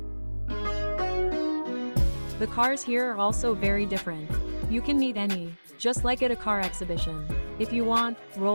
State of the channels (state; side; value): inverted; both; correlation -1.00